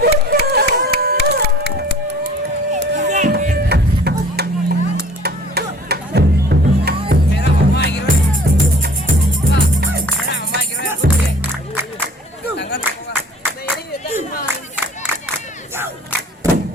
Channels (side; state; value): both; normal; correlation 0.50